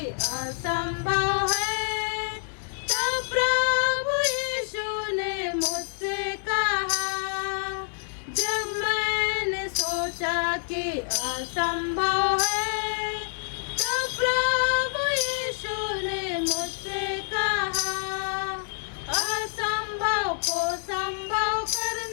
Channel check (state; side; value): silent; right; digital silence